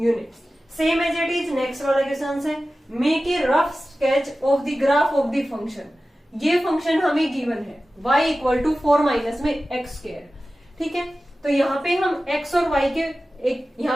Same as it is next वाला क्वेश्चन है, make a rough sketch of the graph of the function. ये function हमें गिवन है y इक्वल टू 4 माइनस में एक्स स्क्वायर। ठीक है, तो यहाँ पे हम x और y के एक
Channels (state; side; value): normal; both; correlation 0.95